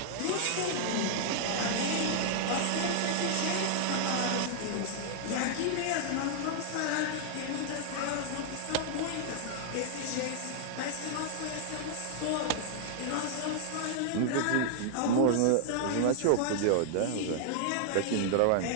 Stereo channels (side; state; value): both; different; correlation -0.01